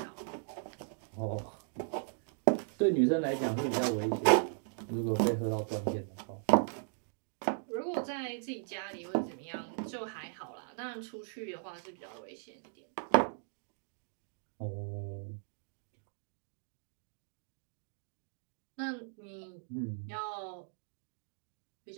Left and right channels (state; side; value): silent; left; digital silence